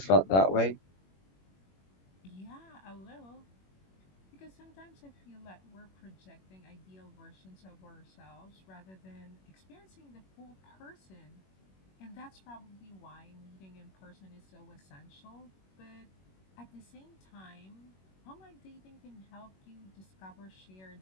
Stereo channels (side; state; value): right; late; 21 ms